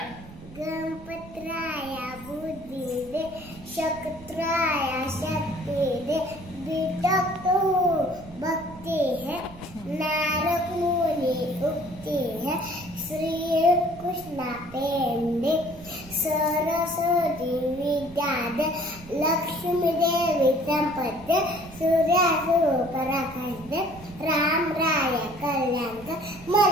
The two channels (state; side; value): noise; right; rumble, 18 dB below the sound